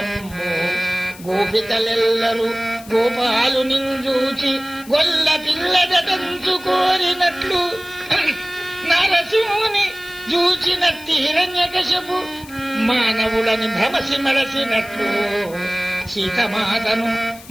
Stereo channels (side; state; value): left; noise; hiss, 20 dB below the sound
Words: గోపికలెల్లరూ గోపాలు నింజూచి గొల్ల పిల్లదటంచు కోరినట్లు జూచినట్టి హిరణ్యకశపు మానవులని భ్రమసి మరసినట్లు సీతమాతను